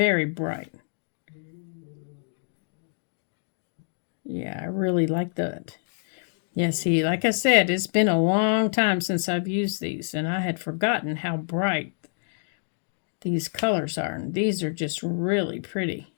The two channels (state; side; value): silent; right; digital silence